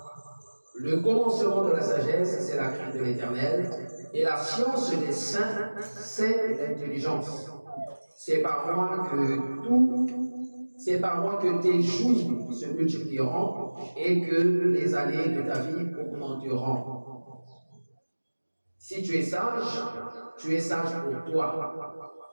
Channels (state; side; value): inverted; both; correlation -1.00